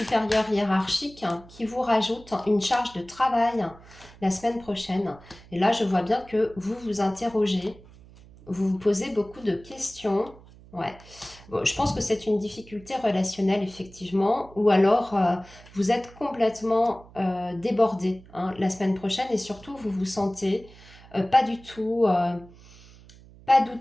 hiérarchique qui vous rajoute une charge de travail la semaine prochaine. Et là, je vois bien que vous vous interrogez, vous vous posez beaucoup de questions. Ouais. Bon, je pense que c'est une difficulté relationnelle, effectivement. Ou alors, vous êtes complètement débordé la semaine prochaine et surtout, vous vous sentez pas du tout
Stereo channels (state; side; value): noise; right; hum, 22 dB below the sound